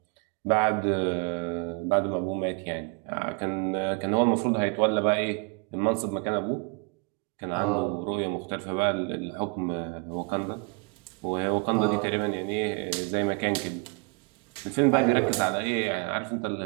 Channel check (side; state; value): left; quieter; 30.8 dB